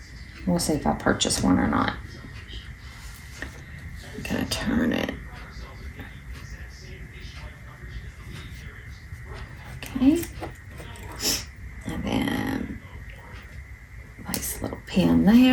We'll see if I purchase one or not. I'm gonna turn it. Okay. And then nice little pin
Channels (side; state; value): both; identical; correlation 1.00